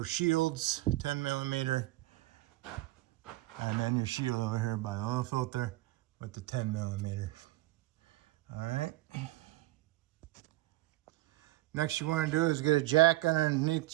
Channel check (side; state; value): left; quieter; 18.1 dB